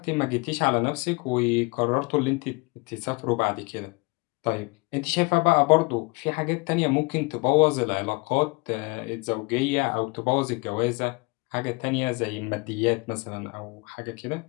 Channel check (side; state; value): right; quieter; 28.0 dB